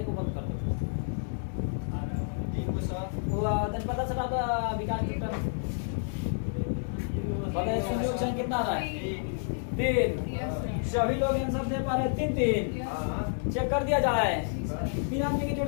को बंद कर दो। पता चला था विकास शून्यों की संख्या कितना आ रहा है 3। सभी लोग आंसर दे पा रहे हैं 3। चेक कर दिया जाए, 3 आदमी की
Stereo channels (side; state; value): right; silent; digital silence